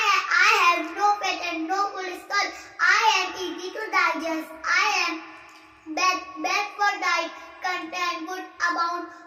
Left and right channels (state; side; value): identical; both; correlation 1.00